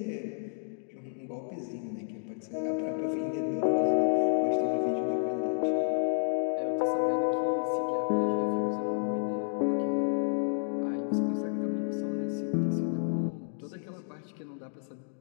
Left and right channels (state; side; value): silent; right; digital silence